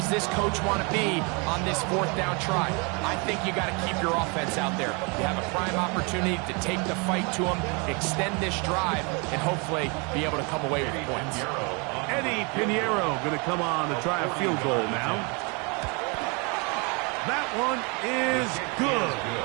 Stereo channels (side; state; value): left; quieter; 31.5 dB